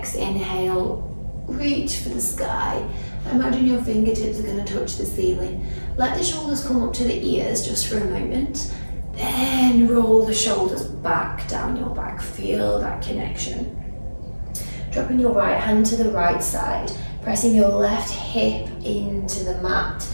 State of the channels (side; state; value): both; inverted; correlation -1.00